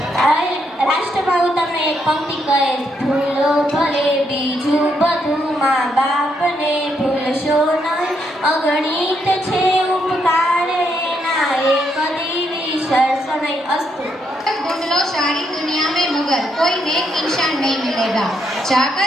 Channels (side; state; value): both; normal; correlation 0.77